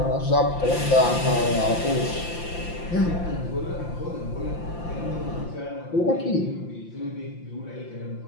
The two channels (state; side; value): late; right; 5.8 ms